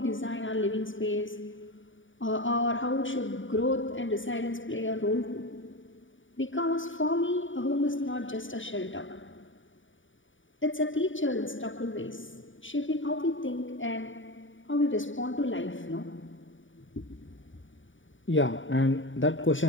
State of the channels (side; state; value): right; late; 0.56 ms